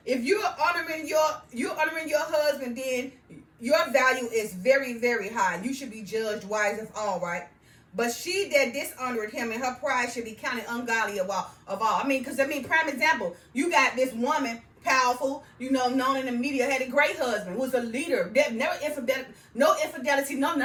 honoring your husband, then your value is very, very high. You should be judged wise of all, right? But she that dishonored him in her pride should be counted ungodly of all. Prime example, you got this woman, powerful, known in the media, had a great husband, was a leader, no infidelity, none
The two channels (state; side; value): identical; both; correlation 1.00